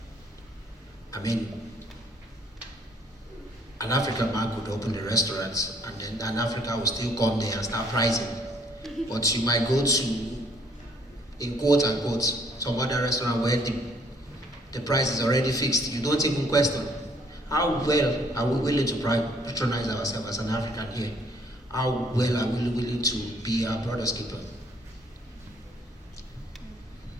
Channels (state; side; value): normal; both; correlation 0.62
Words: I mean, an African man could open a restaurant and then an African will still come there and start pricing. But you might go to, in quote unquote, some other restaurant where the price is already fixed. You don't even question. How well are we willing to patronize ourselves as an African here? How well are we willing to be our brother's keeper?